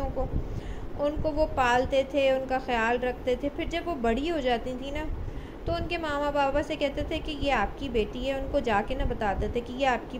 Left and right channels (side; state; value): both; identical; correlation 1.00